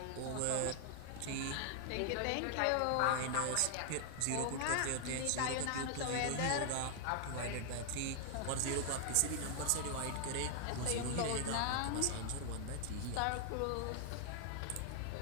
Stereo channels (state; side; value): different; both; correlation 0.00